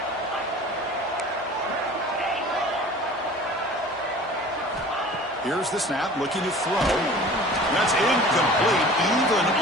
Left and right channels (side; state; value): both; normal; correlation 0.43